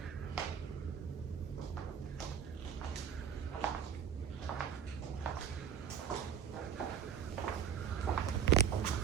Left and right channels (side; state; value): left; quieter; 8.3 dB